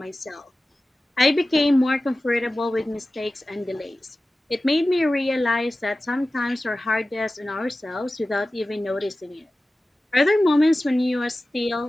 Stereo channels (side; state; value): both; normal; correlation 0.96